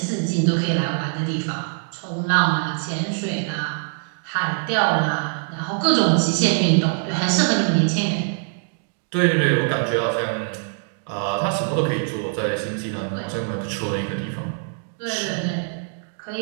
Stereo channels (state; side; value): silent; left; 57 dB below the other